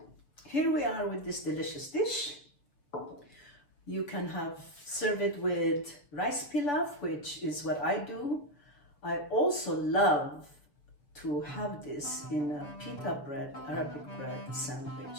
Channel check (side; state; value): right; late; 6.9 ms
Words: here we are with this delicious dish. You can serve it with rice pilav, which is what I do. I also love to have this in a pita bread, Arabic bread sandwich.